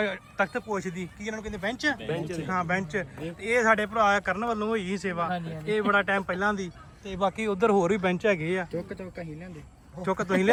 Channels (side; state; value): both; identical; correlation 1.00